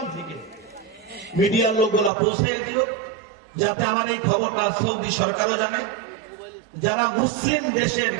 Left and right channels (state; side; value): drops out; left; at 2.1 s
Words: থেকে। মিডিয়ার লোকগুলা পৌঁছে দিও, যাতে আমার এই খবরটা সৌদি সরকারও জানে, যারা মুসলিম দেশের